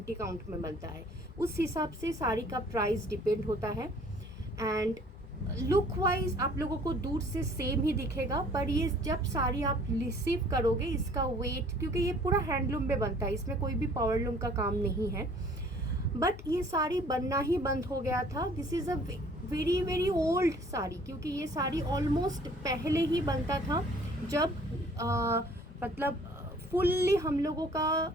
काउंट में बनता है. उस हिसाब से साड़ी का प्राइस डिपेंड होता है एंड लुक वाइज आप लोगों को दूर से सेम ही दिखेगा, पर ये जब साड़ी आप रिसीव करोगे इसका वेट, क्योंकि ये पूरा हैंडलूम में बनता है, इसमें कोई भी पावरलूम का काम नहीं है, बट ये साड़ी बनना ही बंद हो गया था. This is a very very old sari, क्योंकि ये साड़ी ऑलमोस्ट पहले ही बनता था जब मतलब फुल्ली हम लोगों का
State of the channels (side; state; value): both; normal; correlation 0.54